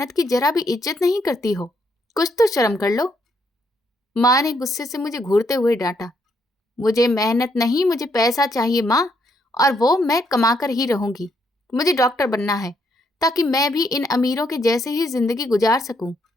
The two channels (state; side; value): normal; both; correlation 0.74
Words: की जरा भी इज्जत नहीं करती हो। कुछ तो शर्म कर लो। माँ ने गुस्से से मुझे घूरते हुए डांटा। मुझे मेहनत नहीं, मुझे पैसा चाहिए माँ, और वो मैं कमाकर ही रहूंगी। मुझे डॉक्टर बनना है ताकि मैं भी इन अमीरों के जैसे ही जिंदगी गुजार सकूं।